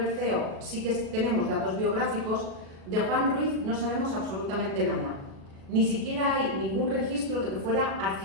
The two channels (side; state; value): left; late; 37 ms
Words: sí que tenemos datos biográficos, de Juan Ruiz no sabemos absolutamente nada. Ni siquiera hay ningún registro de que fuera